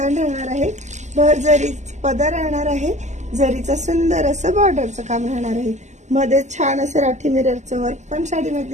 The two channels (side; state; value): left; late; 0.34 ms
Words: राहणार आहे, भर जरी पदर राहणार आहे, जरीचं सुंदर असं बॉर्डरचं काम राहणार आहे. मध्ये छान असं राठी मिररचं वर्क पण साडीमध्ये